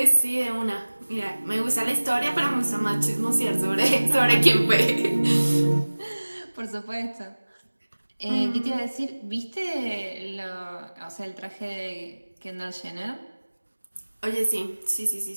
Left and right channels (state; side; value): inverted; both; correlation -1.00